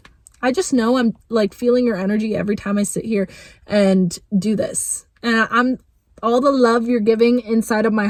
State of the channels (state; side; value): identical; both; correlation 1.00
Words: I just know I'm like feeling your energy every time I sit here and do this. And I'm all the love you're giving inside of my